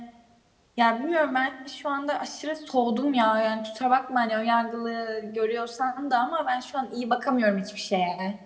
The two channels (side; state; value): both; identical; correlation 1.00